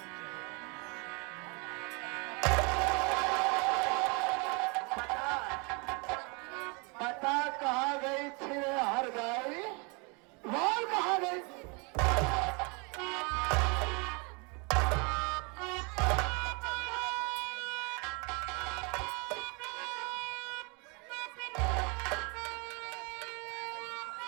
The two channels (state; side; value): quieter; left; 31.7 dB